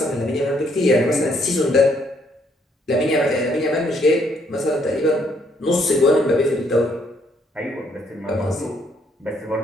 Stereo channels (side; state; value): both; normal; correlation 0.69